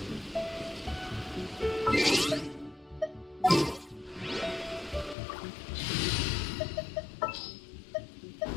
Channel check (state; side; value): drops out; right; at 5.2 s